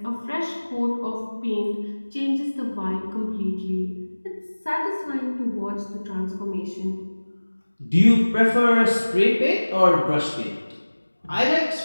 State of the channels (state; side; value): inverted; both; correlation -1.00